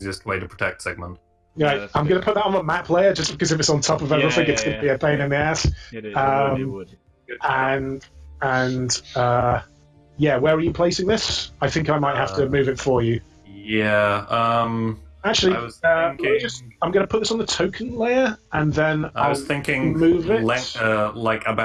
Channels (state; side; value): identical; both; correlation 1.00